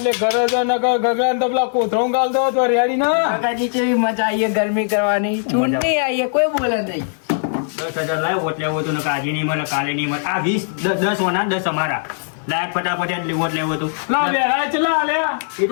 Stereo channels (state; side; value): silent; right; 58 dB below the other